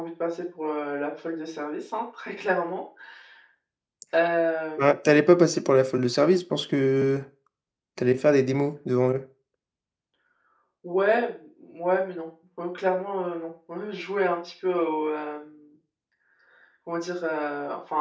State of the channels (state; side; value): identical; both; correlation 1.00